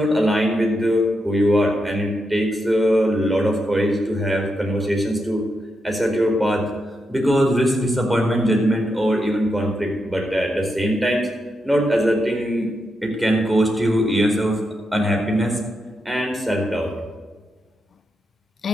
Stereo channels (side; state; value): both; normal; correlation 0.84